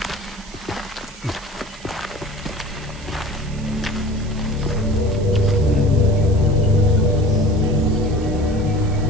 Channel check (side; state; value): right; noise; hiss, 21 dB below the sound